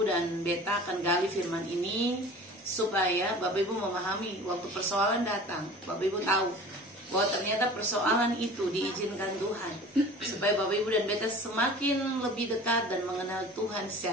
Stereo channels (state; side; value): normal; both; correlation 0.41